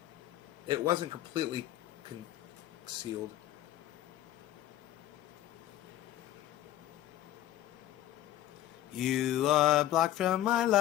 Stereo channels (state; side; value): quieter; right; 13.4 dB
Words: It wasn't completely concealed. You are blocked from my